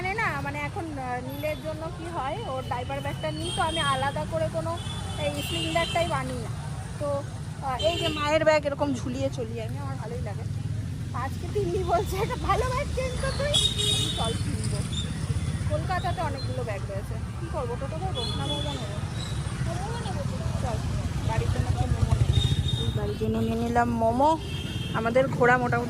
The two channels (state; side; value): identical; both; correlation 1.00